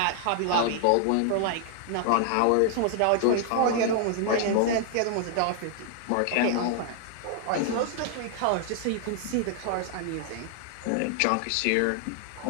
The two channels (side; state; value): both; different; correlation 0.00